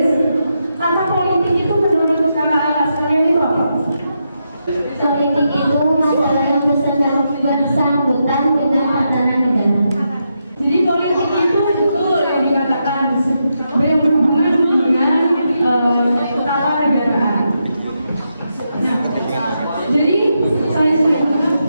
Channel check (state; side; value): inverted; both; correlation -0.84